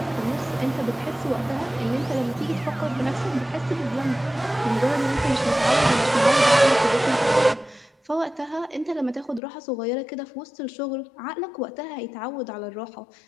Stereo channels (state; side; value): drops out; right; at 9.4 s